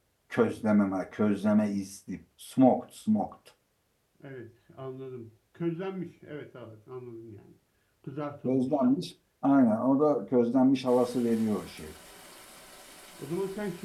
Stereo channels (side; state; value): both; identical; correlation 1.00